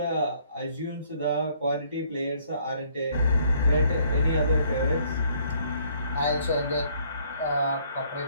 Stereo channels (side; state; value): both; inverted; correlation -0.64